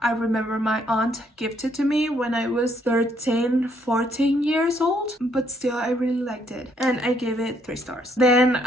I remember my aunt gifted to me when I was 13, 14 years old. But still, I really liked it. And I gave it 3 stars. Then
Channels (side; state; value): both; normal; correlation 0.70